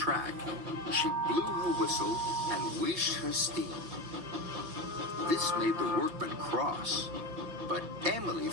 she blew her whistle and wheezed her steam. This made the workmen cross, but Emily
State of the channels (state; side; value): late; left; 5.9 ms